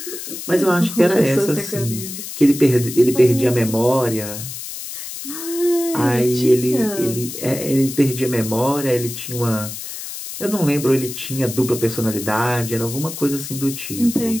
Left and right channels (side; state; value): left; noise; hiss, 9 dB below the sound